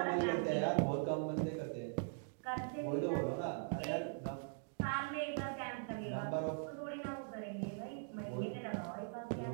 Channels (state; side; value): silent; left; digital silence